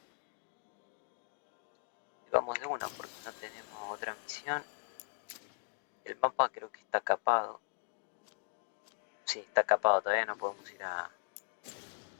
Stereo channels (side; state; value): right; silent; digital silence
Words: Y vamos de una porque no tenemos otra misión. El mapa creo que está capado. Sí, está capado, todavía no podemos ir a...